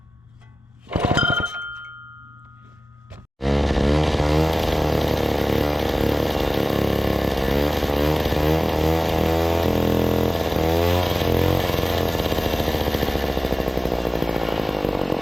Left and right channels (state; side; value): normal; both; correlation 0.96